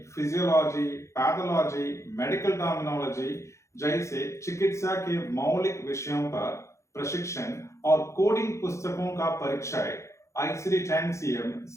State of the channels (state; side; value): late; right; 0.14 ms